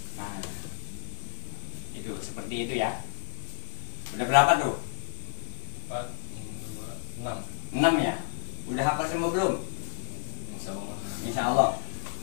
Nah, itu seperti itu ya. Udah berapa tuh? 4, 5, 6. 6 ya? Udah hafal semua belum? Insya Allah.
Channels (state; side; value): silent; right; digital silence